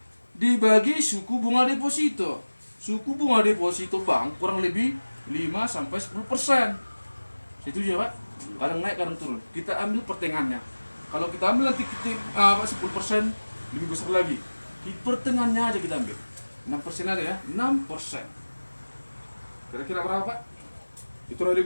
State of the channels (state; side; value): inverted; both; correlation -1.00